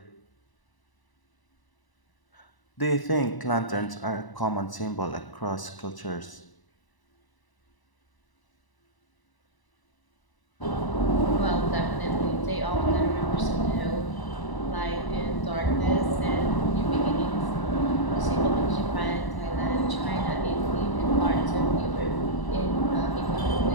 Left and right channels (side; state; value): right; late; 1.0 ms